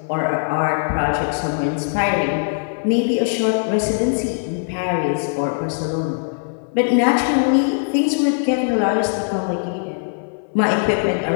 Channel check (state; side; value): silent; right; 61 dB below the other